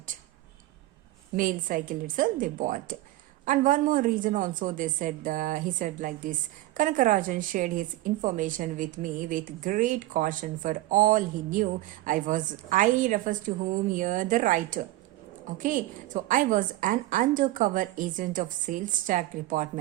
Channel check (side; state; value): left; quieter; 16.9 dB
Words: Male cycle itself, they bought. And one more reason also they said, he said like this, Kanakarajan shared his information with me with great caution for all he knew. I refers to whom here the writer. Okay, so I was an undercover agent of sales tax